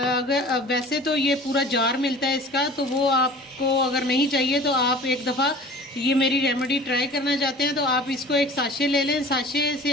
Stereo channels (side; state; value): both; normal; correlation 0.42